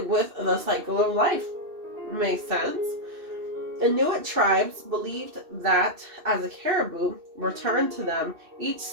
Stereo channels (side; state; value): left; late; 2.6 ms